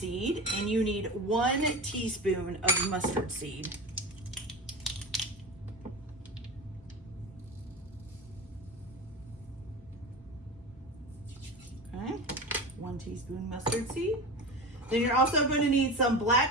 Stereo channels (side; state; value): both; normal; correlation 0.28